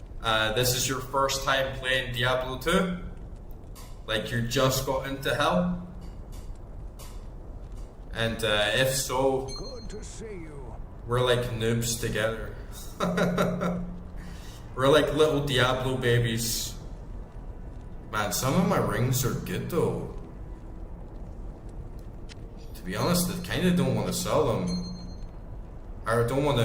this is your first time playing Diablo 2. Like you just got into hell. And if so, Good to see you. we're like noobs together. We're like little Diablo babies. Man, some of my rings are good though. To be honest, I kind of don't want to sell them. Or I don't want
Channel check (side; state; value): both; identical; correlation 1.00